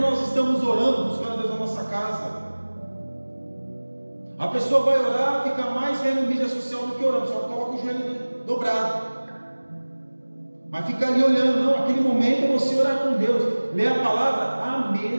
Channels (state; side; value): inverted; both; correlation -1.00